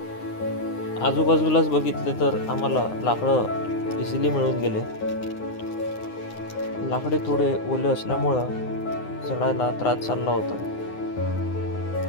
आजूबाजूलाच बघितले तर आम्हाला लाकडं इझिली मिळून गेले. लाकडे थोडे ओले असल्यामुळं चढायला त्रास चालला होता.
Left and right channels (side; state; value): right; late; 9.7 ms